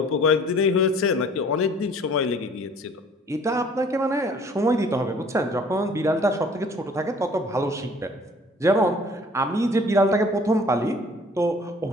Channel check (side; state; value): both; normal; correlation 0.53